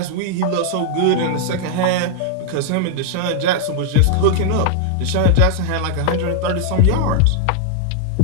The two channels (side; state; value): both; different; correlation 0.00